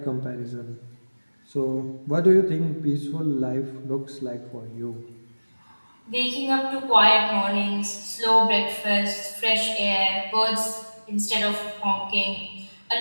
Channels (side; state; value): both; inverted; correlation -1.00